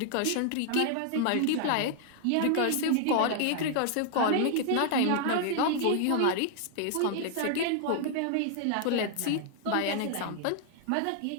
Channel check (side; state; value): both; different; correlation 0.00